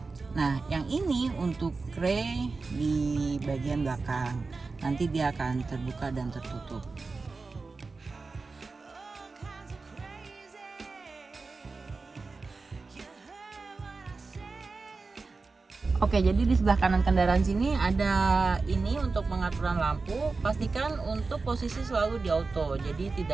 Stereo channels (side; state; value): left; quieter; 4.0 dB